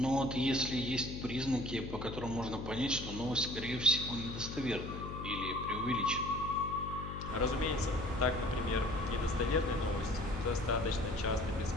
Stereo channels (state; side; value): noise; left; hum, 8 dB below the sound